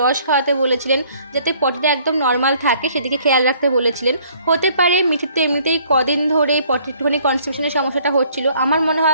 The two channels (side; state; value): both; inverted; correlation -0.60